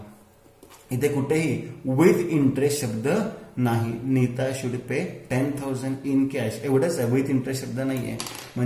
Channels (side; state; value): both; identical; correlation 1.00